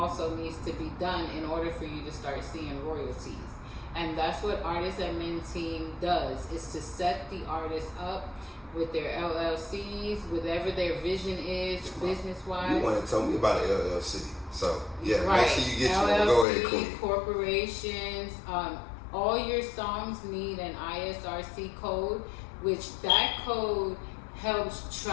needs to be done in order for you to start seeing royalties. And that's what Artist Admin Team does, is to set the artists up with their LLCs, whatever their vision is, business-wise. You want to tell me about an LLC. So, yeah, right. Make sure you get LLC, you. Go ahead, Queen. Corporations, all your songs need an ISRC code, which that code helps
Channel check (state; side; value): drops out; right; at 16.4 s